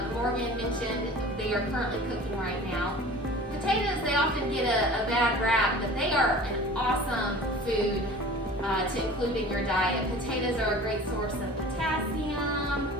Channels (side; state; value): both; normal; correlation 0.42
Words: Morgan mentioned, they are currently cooking right now. Potatoes, they often get a bad rap, but they are an awesome food to include in your diet. Potatoes are a great source of potassium,